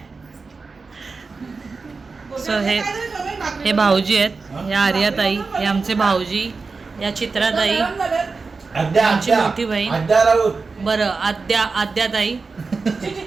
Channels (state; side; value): quieter; left; 4.3 dB